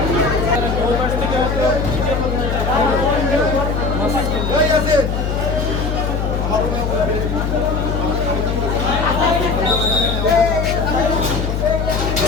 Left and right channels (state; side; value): noise; left; hum, 1 dB below the sound